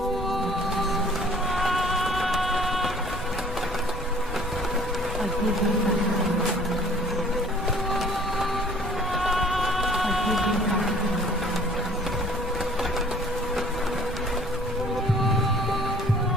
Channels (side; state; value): both; normal; correlation 0.53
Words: I give you back. I give you back.